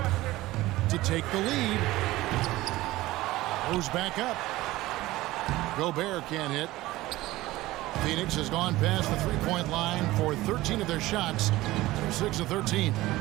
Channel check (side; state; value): left; quieter; 17.7 dB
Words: To take the lead. Moves back up. Gobert can't hit. Phoenix has gone past the three-point line for 13 of their shots. They're 6 of 13.